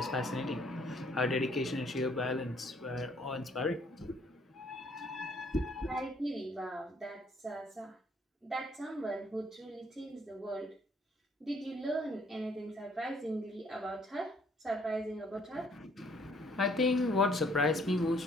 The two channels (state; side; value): normal; both; correlation 0.63